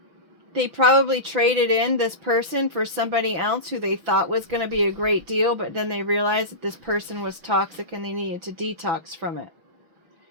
They probably traded in this person for somebody else who they thought was going to be a great deal, but then they realized that this person was toxic and they needed to detox from it.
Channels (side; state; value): left; late; 5.9 ms